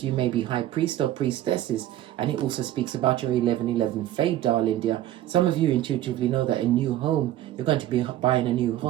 You may be high priest or priestesses. And it also speaks about your 1111 fade, darling dear. Some of you intuitively know that a new home, you're going to be buying a new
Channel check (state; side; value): quieter; left; 13.4 dB